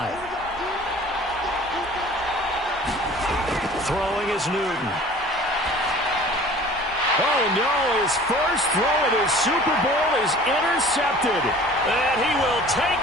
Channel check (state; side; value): normal; both; correlation 0.46